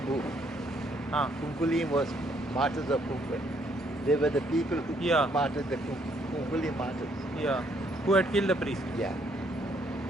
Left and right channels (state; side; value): normal; both; correlation 0.69